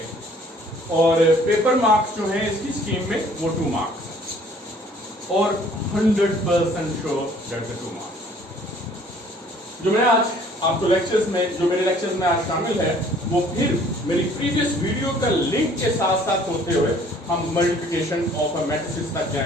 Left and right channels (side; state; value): both; normal; correlation 0.56